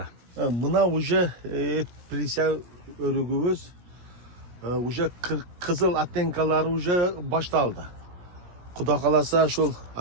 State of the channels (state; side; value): late; left; 17 ms